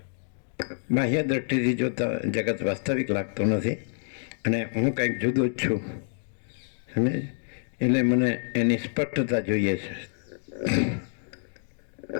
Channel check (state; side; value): silent; right; digital silence